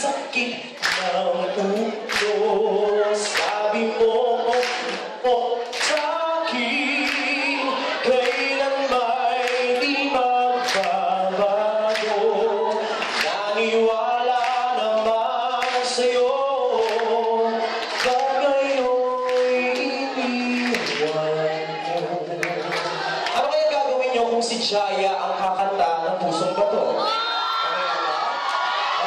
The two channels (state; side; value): identical; both; correlation 1.00